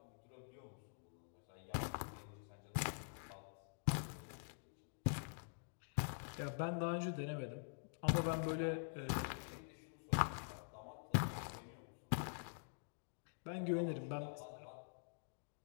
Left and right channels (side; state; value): right; silent; digital silence